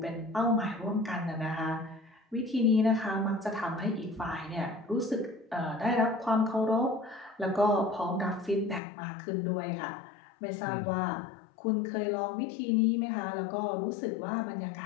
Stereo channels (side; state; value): right; drops out; at 8.8 s